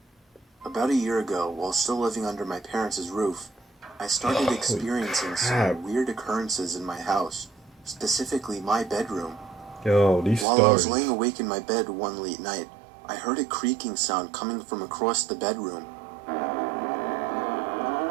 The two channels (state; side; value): drops out; left; at 10.5 s